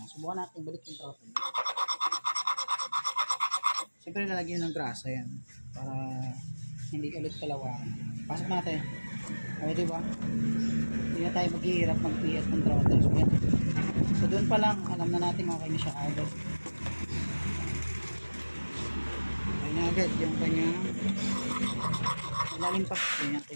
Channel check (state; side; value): inverted; both; correlation -1.00